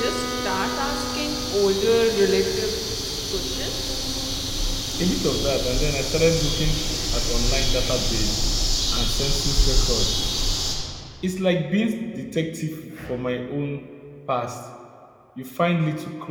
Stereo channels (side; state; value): both; identical; correlation 1.00